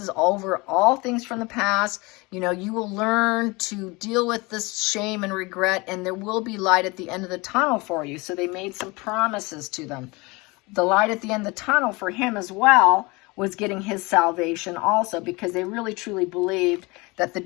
over all things from the past. You know, you will learn to deal with this shame and regret, and there will be light at the end of the tunnel for you. So they made some promises to them. The light at the end of the tunnel for him as well was getting his salvation also, because they really truly believed that the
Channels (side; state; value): right; quieter; 25.0 dB